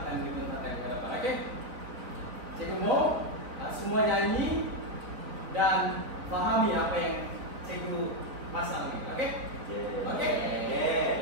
dibentangkan ke depan. Okey? Cikgu mau semua nyanyi dan fahami apa yang cikgu pasang ini. Okey? Okey?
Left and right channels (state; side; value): late; left; 4.2 ms